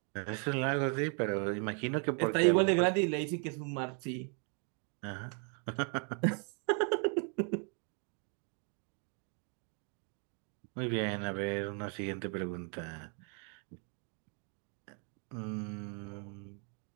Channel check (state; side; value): quieter; left; 39.9 dB